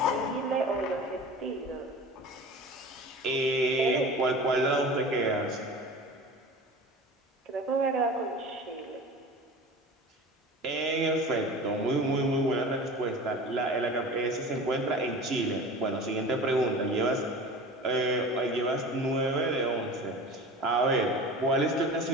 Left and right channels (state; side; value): normal; both; correlation 0.37